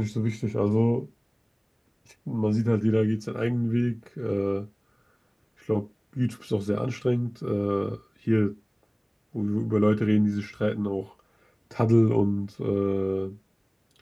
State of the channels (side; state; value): both; identical; correlation 1.00